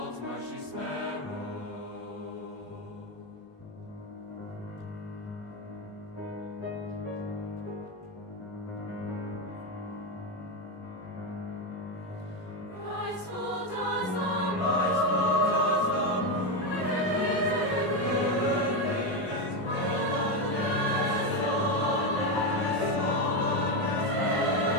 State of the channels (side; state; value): both; normal; correlation 0.10